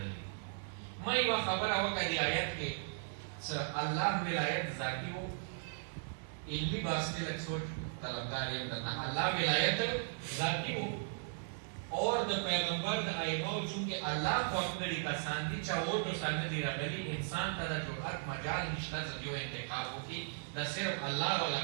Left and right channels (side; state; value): left; silent; digital silence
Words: دي ما یوه خبره وکړه دې آیت کې چې الله ولایت ذاتي و علمي بحث کې لږ سوچ طلبګار یم درنه الله ولایت ذاتي و اور د پیغمبر د ائمهو چونکې الله خوښ کړي کسان دي چې اور دوسان نه دي راغلي انسان ته د جرأت مجال نشته چې یو انتخاب وکړي دا صرف الله والا